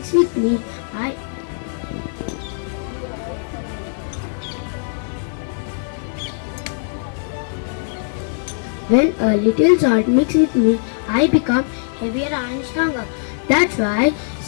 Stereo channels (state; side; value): silent; right; digital silence